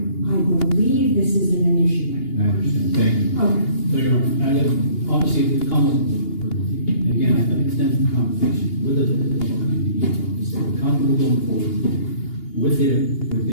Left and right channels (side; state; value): right; late; 2.8 ms